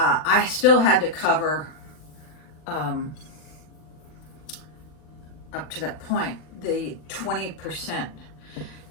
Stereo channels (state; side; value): late; right; 40 ms